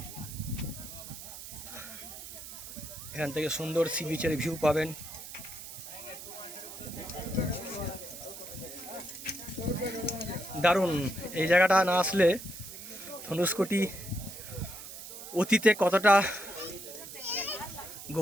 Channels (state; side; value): noise; right; hiss, 12 dB below the sound